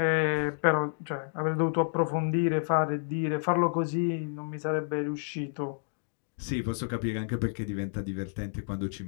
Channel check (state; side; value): silent; right; digital silence